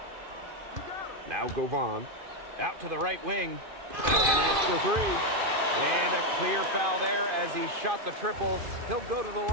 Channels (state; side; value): late; left; 2.5 ms